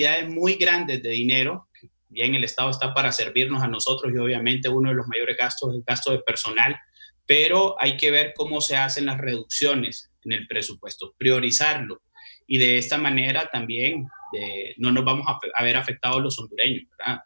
muy grandes de dinero. Bien, el Estado está para servirnos a nosotros y obviamente uno de los mayores gastos es el gasto de personal, pero hay que ver cómo se hacen las reducciones en el presupuesto, priorizarlo y de esta manera también no nos vamos a ver afectados los hondureños, ¿verdad?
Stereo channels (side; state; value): both; inverted; correlation -1.00